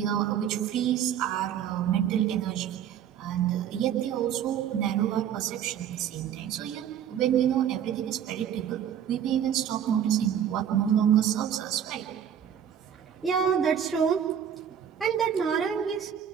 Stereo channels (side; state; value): left; quieter; 9.2 dB